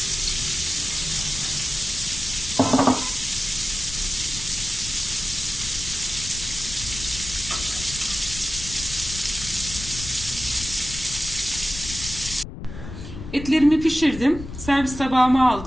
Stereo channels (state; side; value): noise; left; rumble, 10 dB below the sound